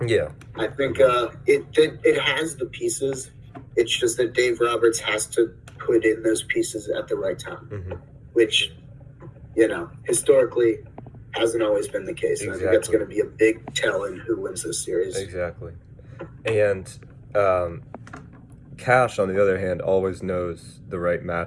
Yeah, I think it has the pieces. It's just that Dave Roberts has to put in those pieces at the right time, mm-hmm. which historically hasn't always been the case. Exactly. I think that's going to be a big tell in who wins this series. Exactly. And Cash, on the other hand, always knows the right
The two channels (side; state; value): both; identical; correlation 1.00